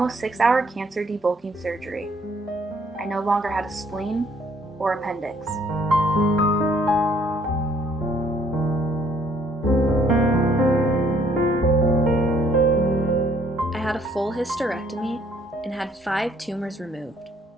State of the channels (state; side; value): normal; both; correlation 0.63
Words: 6-hour cancer debulking surgery, I no longer had a spleen or appendix. I had a full hysterectomy and had 5 tumors removed.